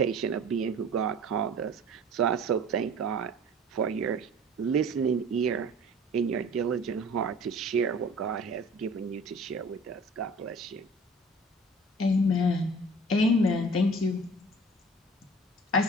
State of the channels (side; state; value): both; normal; correlation 0.44